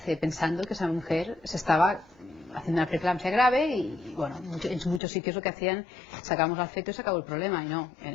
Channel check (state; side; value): drops out; right; at 5.0 s